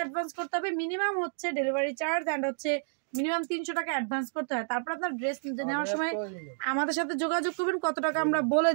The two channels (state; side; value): silent; left; digital silence